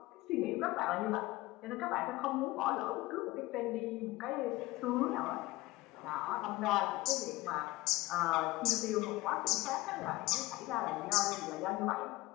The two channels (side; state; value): right; quieter; 19.6 dB